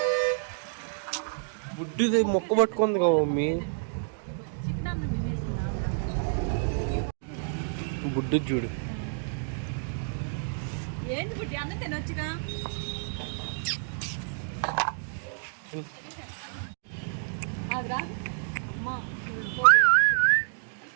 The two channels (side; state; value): left; silent; digital silence